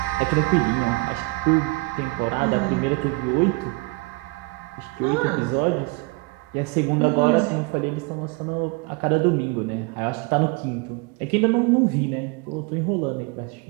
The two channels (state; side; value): quieter; left; 26.3 dB